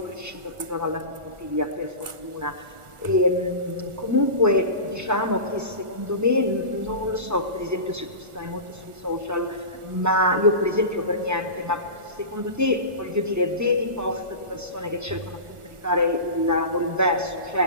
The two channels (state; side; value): late; left; 1.4 ms